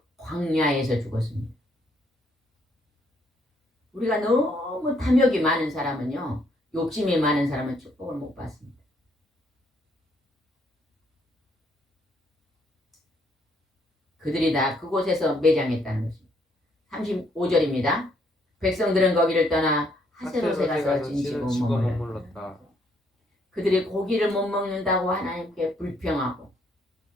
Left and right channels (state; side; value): normal; both; correlation 0.70